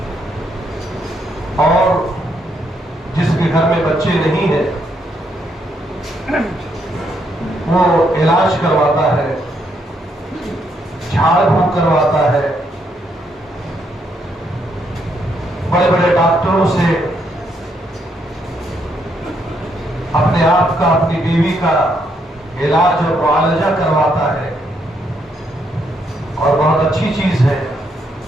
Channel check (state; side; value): normal; both; correlation 0.75